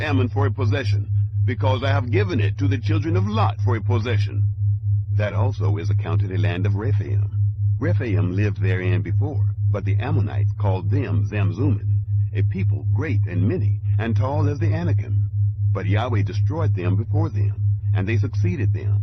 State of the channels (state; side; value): identical; both; correlation 1.00